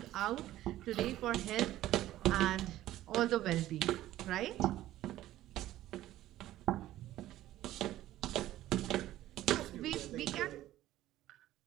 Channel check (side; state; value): left; quieter; 14.3 dB